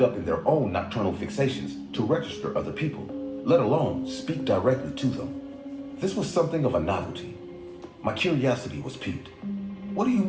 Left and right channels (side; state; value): both; identical; correlation 1.00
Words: in their own nocturnal fixations to register other people, let alone speak directly to them. This was something of a novelty. My curiosity was piqued. What do you